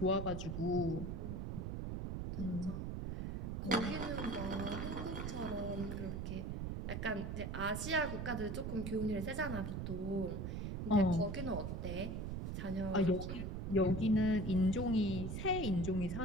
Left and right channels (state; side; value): noise; right; rumble, 4 dB below the sound